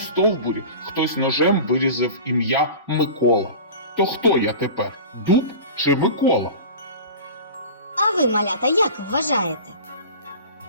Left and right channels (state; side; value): inverted; both; correlation -0.36